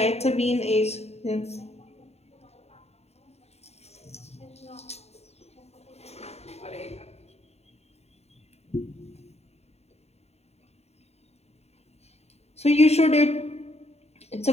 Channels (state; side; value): late; right; 0.31 ms